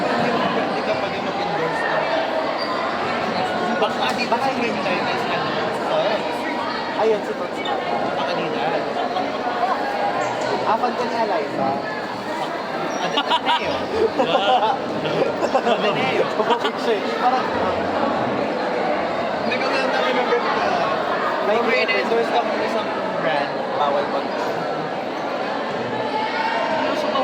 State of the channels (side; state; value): both; identical; correlation 1.00